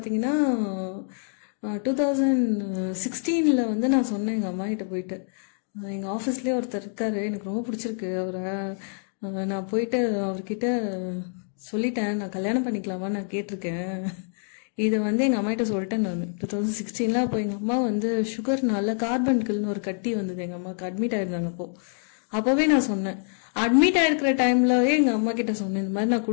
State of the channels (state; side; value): silent; right; 61 dB below the other